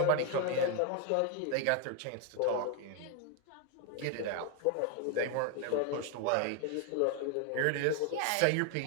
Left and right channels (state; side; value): different; both; correlation 0.01